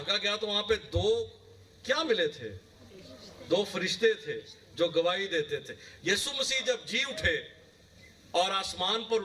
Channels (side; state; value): both; identical; correlation 1.00